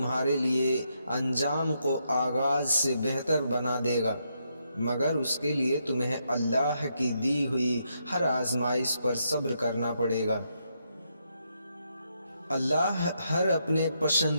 لیے انجام کو آغاز سے بہتر بنا دے گا، مگر اس کے لیے تمہیں اللہ کی دی ہوئی ہر آزمائش پر صبر کرنا پڑے گا۔ اللہ ہر اپنے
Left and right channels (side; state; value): both; inverted; correlation -0.79